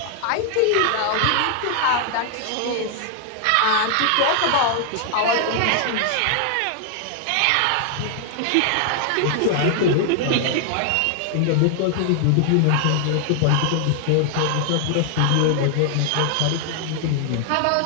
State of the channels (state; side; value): different; both; correlation 0.00